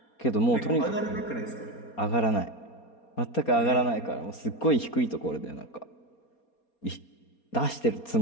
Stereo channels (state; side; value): late; right; 4.3 ms